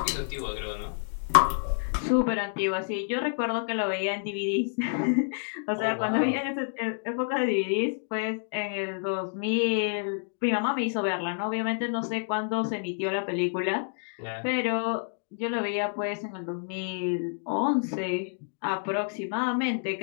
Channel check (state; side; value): silent; right; digital silence